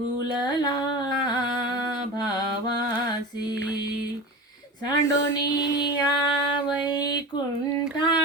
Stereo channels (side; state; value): both; normal; correlation 0.29